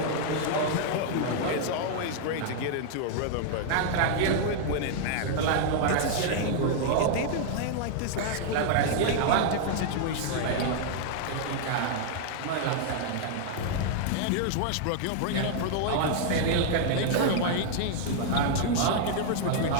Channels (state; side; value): different; both; correlation -0.01